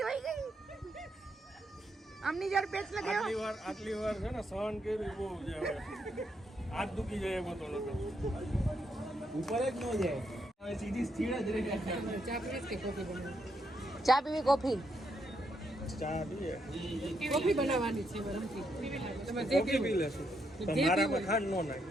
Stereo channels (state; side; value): normal; both; correlation 0.78